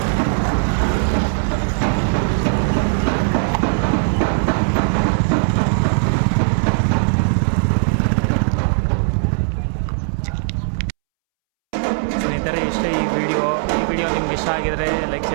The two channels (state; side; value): silent; left; 67 dB below the other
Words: ಸ್ನೇಹಿತರೆ, ಇಷ್ಟೇ ಈ ವಿಡಿಯೋ ನಿಮ್ಗೆ ಇಷ್ಟ ಆಗಿದರೆ ಲೈಕ್,